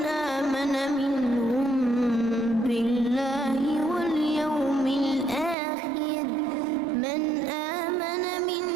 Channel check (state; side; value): drops out; left; at 5.6 s